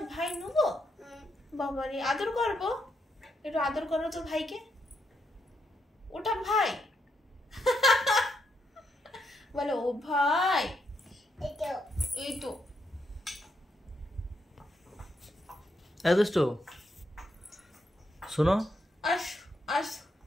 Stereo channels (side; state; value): both; normal; correlation 0.79